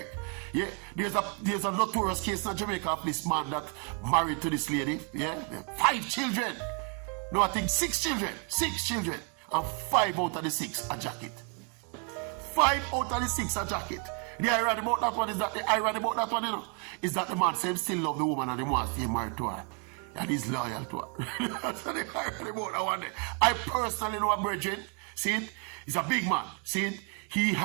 Yeah, there's a notorious case in Jamaica of this man that married to this lady. Yeah, 5 children. No, I think 6 children. 6 children. And 5 out of the 6 a jacket. 5 out of the 6 a jacket. The irony about that one is that you know, is that the man says still love the woman and he wants to get married to her. And he's loyal to her. That's the irony about that one. I personally know a brethren. See it? He's a big man. See it? He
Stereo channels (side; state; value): left; quieter; 36.0 dB